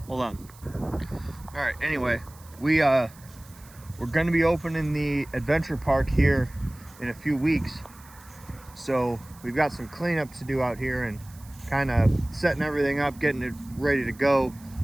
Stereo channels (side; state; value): right; noise; hiss, 24 dB below the sound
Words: hold on. All right, anyway, we're going to be opening the adventure park here in a few weeks, so we've got some cleanup to do out here and kind of setting everything up, getting it ready to go,